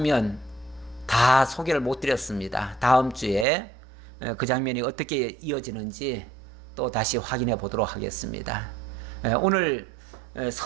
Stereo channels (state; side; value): drops out; left; at 3.5 s